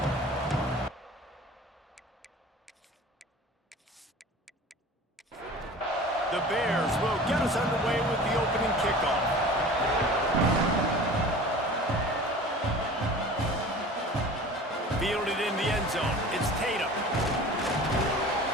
The Bears will get us underway with the opening kickoff. Fielded in the end zone. It's Tatum.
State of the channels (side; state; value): both; normal; correlation 0.41